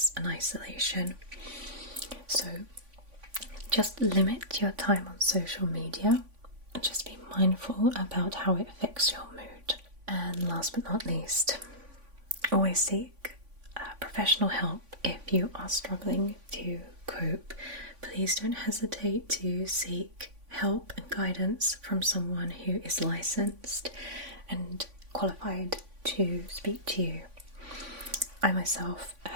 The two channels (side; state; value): left; late; 3.5 ms